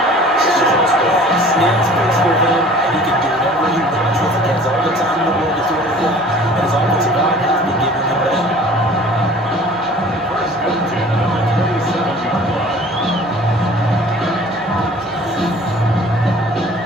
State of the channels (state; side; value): normal; both; correlation 0.48